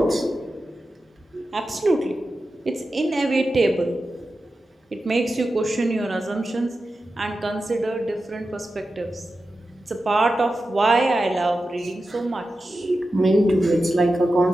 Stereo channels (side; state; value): both; normal; correlation 0.92